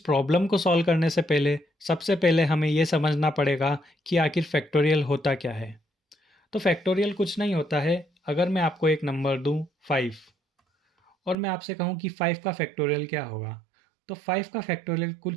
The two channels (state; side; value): drops out; left; at 11.4 s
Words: को सॉल्व करने से पहले सबसे पहले हमें ये समझना पड़ेगा कि आखिर फैक्टोरियल होता क्या है। तो फैक्टोरियल कुछ नहीं होता है। अगर मैं आपको एक नंबर दूं 5 और मैं आपसे कहूं कि 5 का फैक्टोरियल क्या होगा, तो 5 का